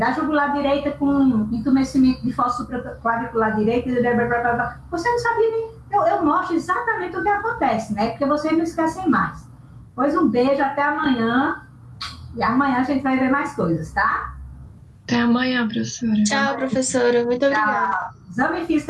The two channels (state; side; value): identical; both; correlation 1.00